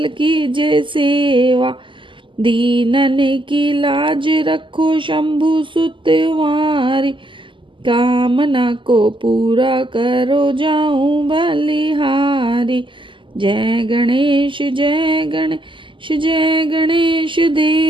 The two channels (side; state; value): left; late; 0.25 ms